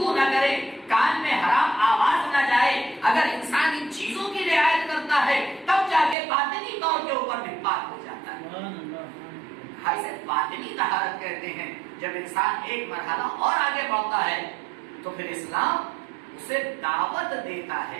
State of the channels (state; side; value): drops out; left; at 6.2 s